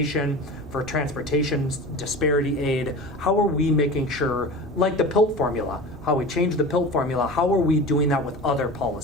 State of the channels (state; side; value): normal; both; correlation 0.33